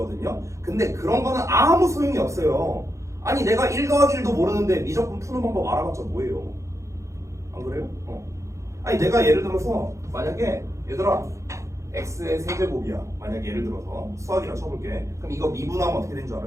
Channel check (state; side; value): late; left; 0.15 ms